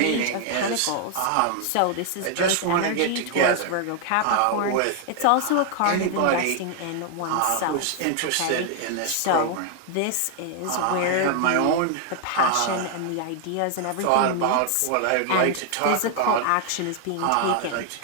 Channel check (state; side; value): different; both; correlation 0.00